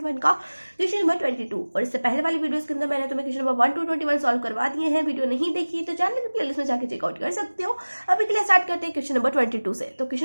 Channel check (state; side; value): inverted; both; correlation -1.00